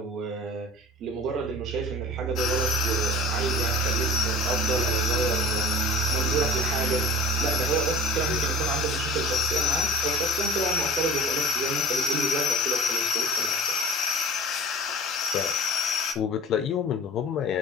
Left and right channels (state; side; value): normal; both; correlation 0.40